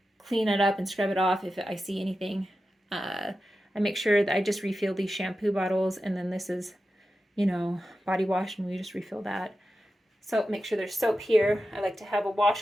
clean it up and scrub it off if I see anything. I make sure that I just refill these shampoo bottles, and then this is, body wash, and we just refill that. So make sure there's soap here. I like to have a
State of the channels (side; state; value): both; normal; correlation 0.92